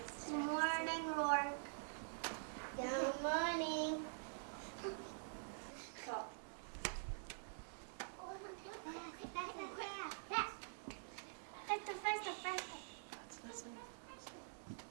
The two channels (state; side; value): silent; left; digital silence